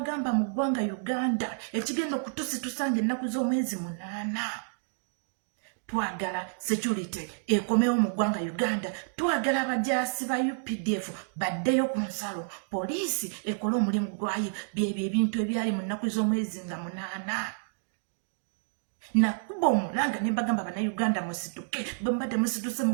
mu ggwanga Uganda ekigenda okutusitusa ennaku z'omwezi 8 twagala security ekomewo mu ggwanga Uganda twagala abajaasi ba UPDF baddeyo ku nsalo poliisi ekole omulimu gwayo byebyo ebintu ebyali mu nnaku z'omwezi nga 8 nakuba omulanga ne mbagamba Bannayuganda musituke bwe mbadde musituse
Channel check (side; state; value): left; silent; digital silence